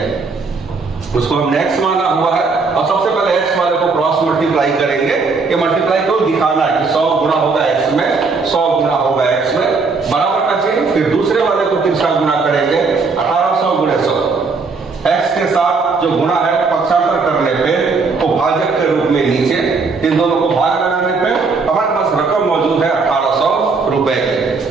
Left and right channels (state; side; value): quieter; left; 4.4 dB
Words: उसको हमने x माना हुआ है, और सबसे पहले x वाले को क्रॉस मल्टीप्लाई करेंगे। ये मल्टीप्लाई को दिखाना है कि 100 गुना होगा x में, 100 गुना होगा x में, बराबर का चिन्ह। फिर दूसरे वाले को तीसरा गुना करेंगे, 1800 गुणे 100। x के साथ जो गुणा है पक्षांतर करने पे वो भाजक के रूप में नीचे, इन दोनों को भाग लगाने पे हमारे पास रकम मौजूद है 1800 रुपए की।